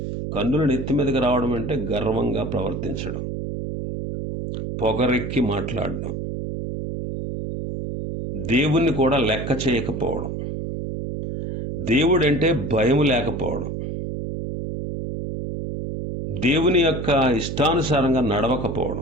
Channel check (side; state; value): right; noise; hum, 5 dB below the sound